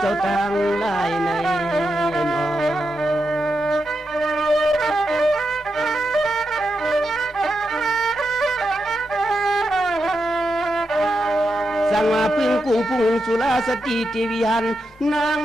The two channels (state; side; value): normal; both; correlation 0.86